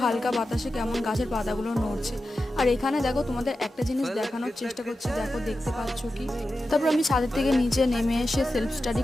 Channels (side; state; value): both; normal; correlation 0.92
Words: হালকা বাতাসে কেমন গাছের পাতাগুলো নড়ছে। আর এখানে দেখো তোমাদের একটা জিনিস দেখানোর চেষ্টা করছি, দেখো দেখতে পাচ্ছ কি। তারপর আমি ছাদের থেকে নিচে নেমে এসে সেলফ স্টাডি